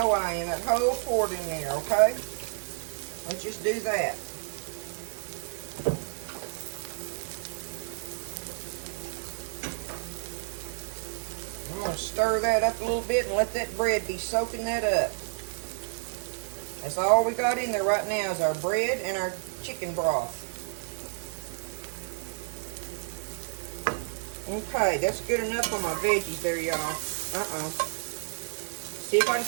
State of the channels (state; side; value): silent; left; digital silence